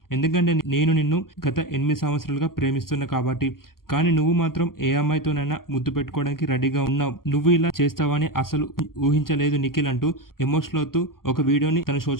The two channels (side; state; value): right; late; 0.92 ms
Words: ఎందుకంటే నేను నిన్ను గత 8 సంవత్సరాలుగా ప్రేమిస్తున్నా కాబట్టి. కానీ నువ్వు మాత్రం ఏ అమ్మాయితోనైనా ముద్దు పెట్టుకోవడానికి రెడీగా ఉన్నావు. నువ్వు ఇలా చేస్తావని అసలు ఊహించలేదు నిఖిల్ అంటూ ఎమోషనల్ అవుతూ ఒక వీడియోని తన